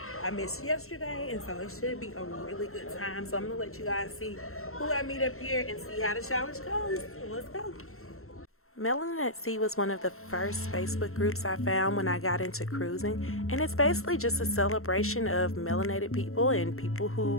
I missed yesterday, and so it should be a really good time. So I'm gonna let you guys see who I meet up here and see how the challenge goes. So let's go. Melanin at Sea was one of the first Facebook groups I found when I got into cruising, and it's basically just a celebration of melanated people and people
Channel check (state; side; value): late; right; 0.62 ms